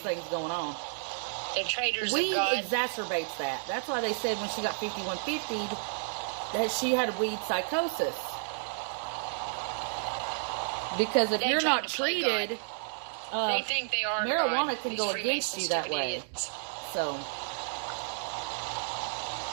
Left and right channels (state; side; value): silent; left; digital silence